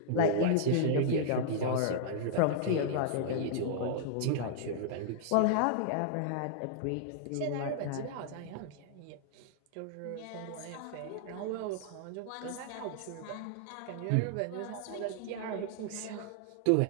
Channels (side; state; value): both; different; correlation -0.01